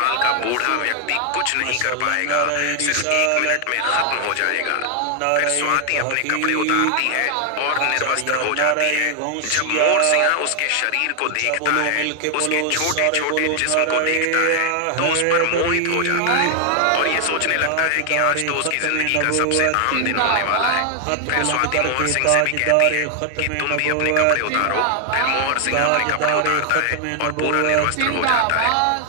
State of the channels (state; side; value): different; both; correlation 0.00